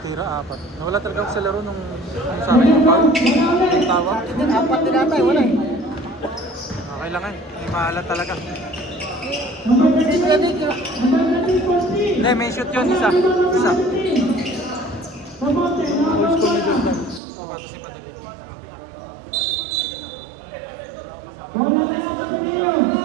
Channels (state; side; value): drops out; left; at 17.2 s